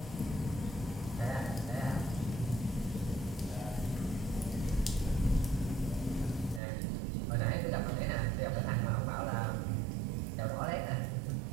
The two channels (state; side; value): drops out; left; at 6.6 s